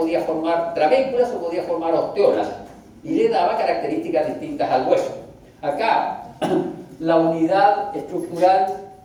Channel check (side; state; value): both; identical; correlation 1.00